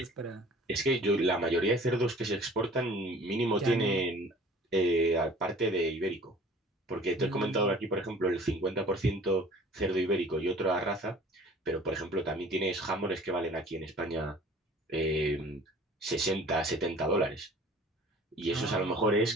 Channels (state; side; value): normal; both; correlation 0.49